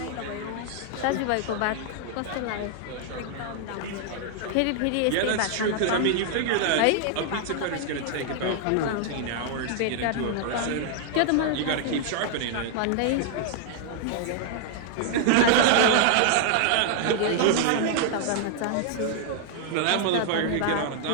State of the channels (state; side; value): different; both; correlation 0.00